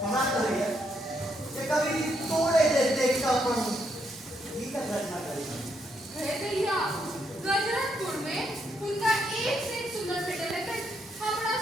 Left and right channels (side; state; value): both; normal; correlation 0.76